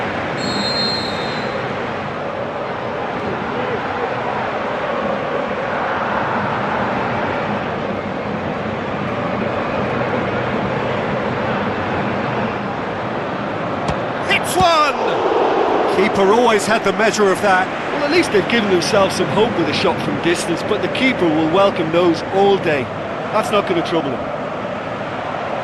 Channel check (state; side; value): identical; both; correlation 1.00